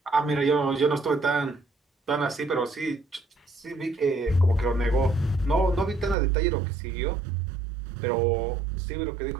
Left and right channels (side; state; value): left; drops out; at 6.2 s